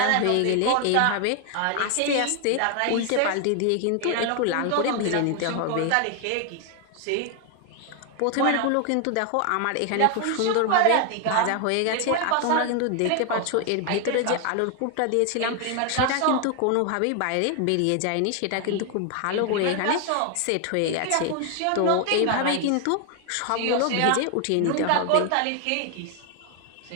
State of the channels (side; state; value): both; different; correlation 0.01